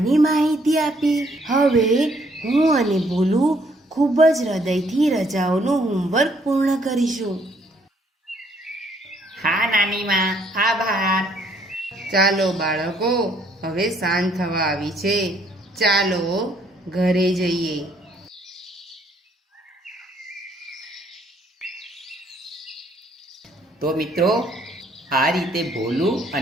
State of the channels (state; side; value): normal; both; correlation 0.66